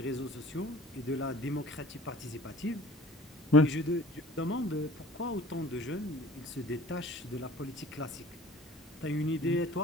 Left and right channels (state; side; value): normal; both; correlation 0.47